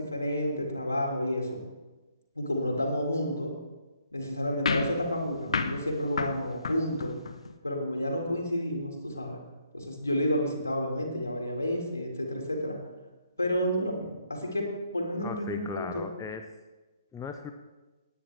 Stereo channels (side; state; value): both; inverted; correlation -0.71